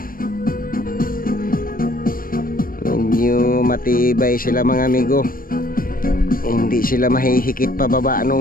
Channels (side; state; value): right; late; 0.41 ms